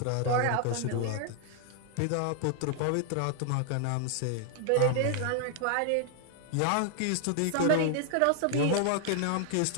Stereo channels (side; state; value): both; different; correlation 0.00